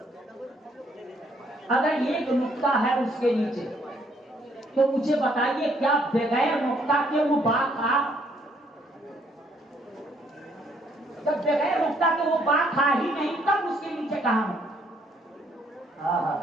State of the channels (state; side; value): normal; both; correlation 0.67